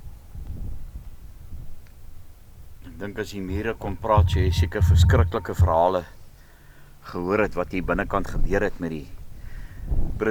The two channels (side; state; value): both; identical; correlation 1.00